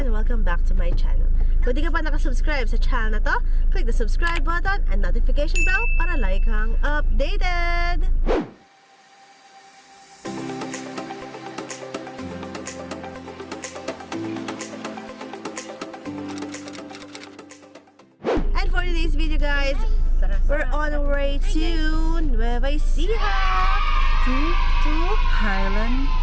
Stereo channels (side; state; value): both; identical; correlation 1.00